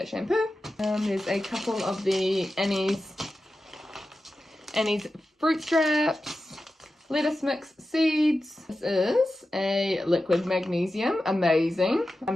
shampoo. There's a couple of the Annie's fruit straps, lettuce mix seeds. This is a liquid magnesium, amazing.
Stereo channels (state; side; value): normal; both; correlation 0.93